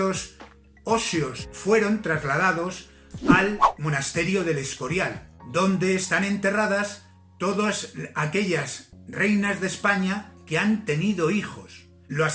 óseos fueron trasladados al monasterio del Escorial, donde están enterradas todas aquellas reinas de España que han tenido hijos.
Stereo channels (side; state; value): both; identical; correlation 1.00